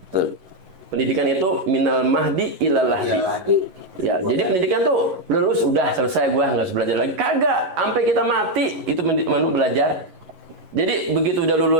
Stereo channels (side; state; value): left; late; 11 ms